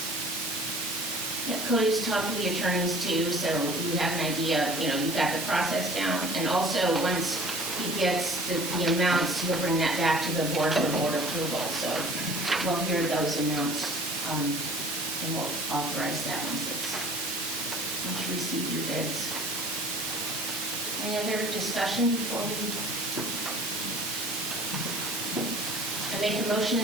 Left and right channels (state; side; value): normal; both; correlation 0.48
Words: Yeah, Cody's talked to the attorneys too, so you have an idea, you've got the process down. And also, once he gets the amounts, he'll bring that back to the board for board approval. So we'll hear those amounts, and we'll authorize that once you receive your bids. Any other discussion before we? I make a motion